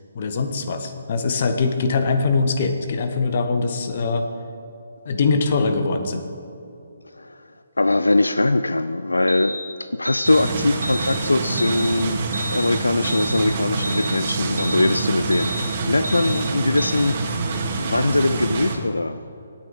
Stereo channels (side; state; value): both; inverted; correlation -0.86